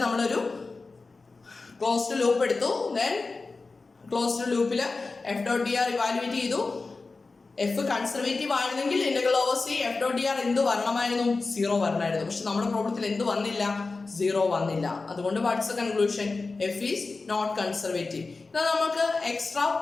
നമ്മളൊരു ക്ലോസ്ഡ് ലൂപ്പ് എടുത്തു. ദെൻ ക്ലോസ്ഡ് ലൂപ്പിൽ F dot D R evaluate ചെയ്തു. എഫ് കൺസർവേറ്റീവ് ആയിരുന്നെങ്കിൽ integral over C F dot D R എന്ത് വരണമായിരുന്നു? 0 വരണമായിരുന്നു. പക്ഷെ നമ്മുടെ പ്രോബ്ലത്തിൽ എന്ത് വന്നില്ല? 0 വന്നില്ല. അതുകൊണ്ട് what's the conclusion? F is not conservative. എന്നാൽ നമുക്ക് എക്സ്ട്രാ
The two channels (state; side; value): quieter; right; 3.8 dB